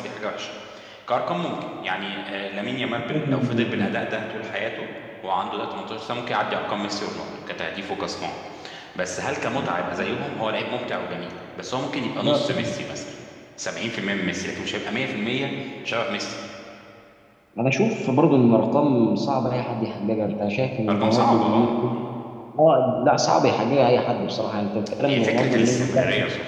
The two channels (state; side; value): identical; both; correlation 1.00